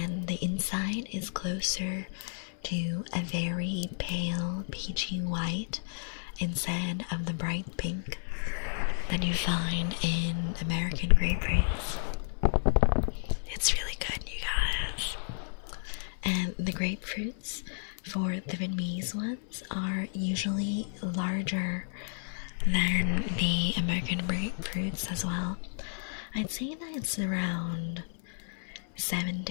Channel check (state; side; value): silent; right; 57 dB below the other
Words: the inside is closer to a very pale peachy white instead of the bright pink that you find in American grapefruits. It's really good, you guys. And the grapefruits for the Vietnamese ones are usually larger than the American grapefruits as well. I'd say that it's around 7